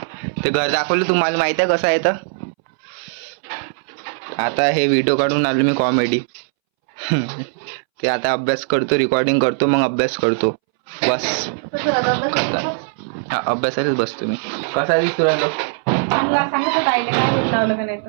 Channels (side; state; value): left; silent; 65 dB below the other